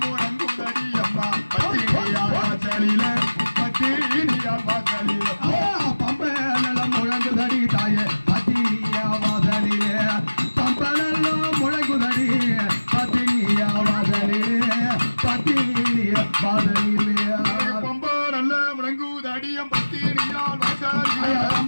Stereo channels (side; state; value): both; inverted; correlation -1.00